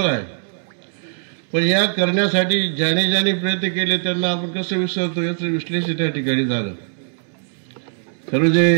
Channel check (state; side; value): silent; left; 65 dB below the other